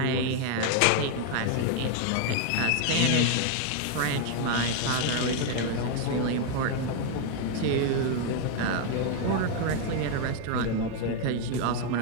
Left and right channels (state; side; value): different; both; correlation 0.01